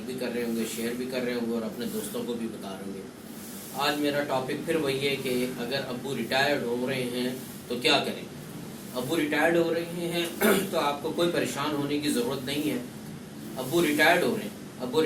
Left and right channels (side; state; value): both; identical; correlation 1.00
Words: بھی کر رہے ہوں گے، شیئر بھی کر رہے ہوں گے اور اپنے دوستوں کو بھی بتا رہے ہوں گے۔ آج میرا ٹاپک پھر وہی ہے کہ اگر ابو ریٹائرڈ ہو رہے ہیں تو کیا کریں۔ ابو ریٹائرڈ ہو رہے ہیں تو آپ کو کوئی پریشان ہونے کی ضرورت نہیں ہے۔ ابو ریٹائرڈ ہو رہے ہیں، ابو